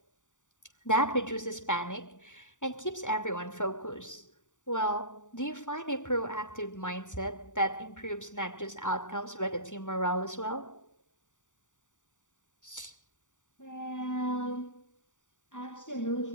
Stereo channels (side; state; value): right; late; 0.86 ms